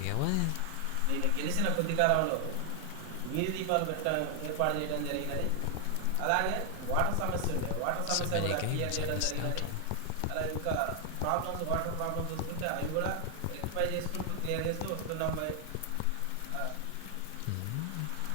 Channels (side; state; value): both; different; correlation 0.00